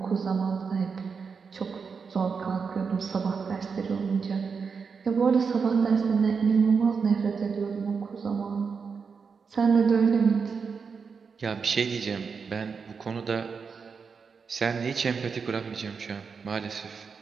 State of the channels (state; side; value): quieter; left; 5.6 dB